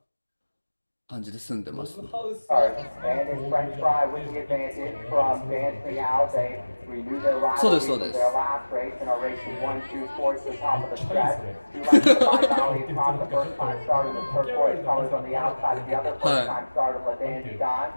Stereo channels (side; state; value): both; inverted; correlation -1.00